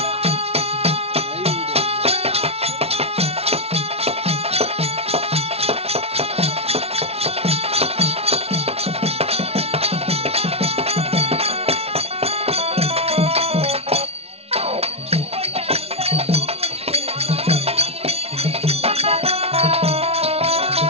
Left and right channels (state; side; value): late; left; 0.30 ms